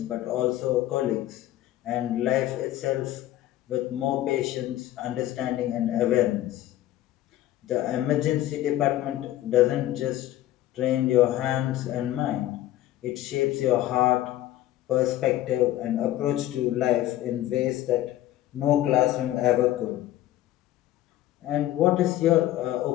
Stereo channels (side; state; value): right; quieter; 14.2 dB